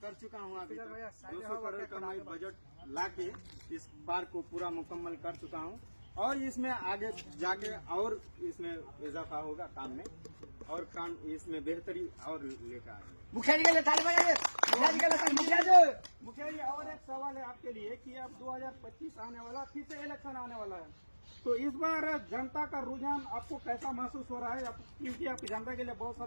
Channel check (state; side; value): inverted; both; correlation -1.00